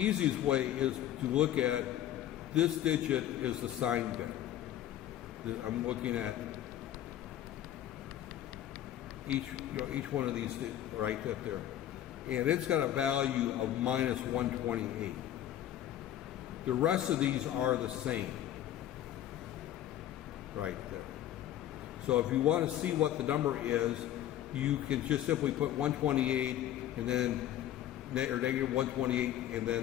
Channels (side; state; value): right; quieter; 12.1 dB